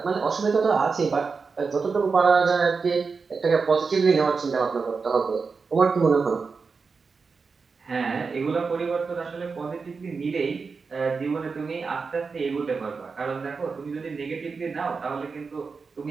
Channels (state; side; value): quieter; left; 4.9 dB